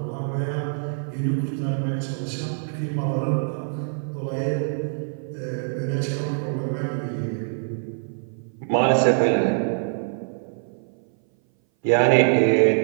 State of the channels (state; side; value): silent; left; 59 dB below the other